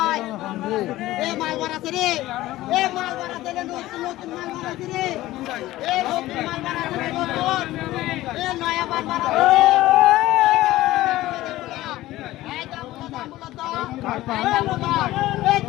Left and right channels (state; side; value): quieter; right; 16.4 dB